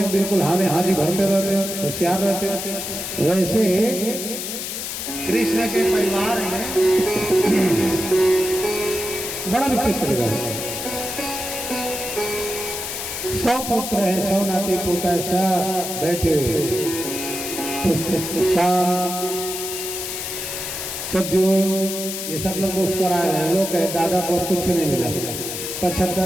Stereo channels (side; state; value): left; noise; hiss, 5 dB below the sound